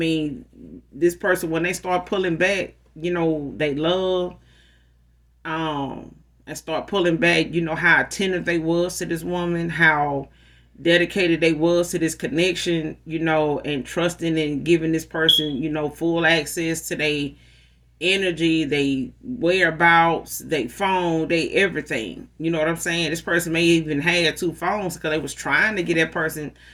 this person, when they start pulling back, they love, and start pulling back, how attentive they was to this woman, how dedicated they was to this connection, and trusting and giving this person, full access to their energy, they whereabouts, they phone, they everything. You know what I'm saying? This person may even have two phones because they was trying to get that person,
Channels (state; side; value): identical; both; correlation 1.00